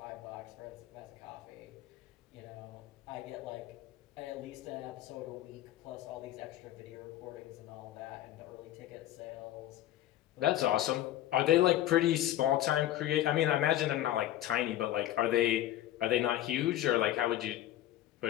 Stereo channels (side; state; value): right; quieter; 13.4 dB